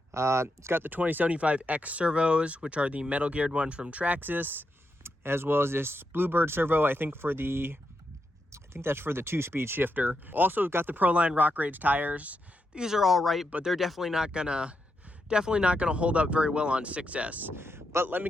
It's got the 2075X servos, which are the metal geared ones from Traxxas, as well as this Bluebird servo, I think that's for the 2-speed shifter. Also got the Proline Rock Rage tires. These are all right, but they're definitely not gonna hold up very well on 6S. But let me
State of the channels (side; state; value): both; normal; correlation 0.83